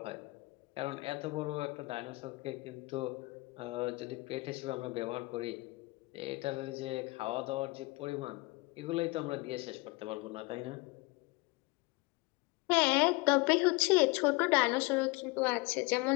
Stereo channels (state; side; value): quieter; right; 24.3 dB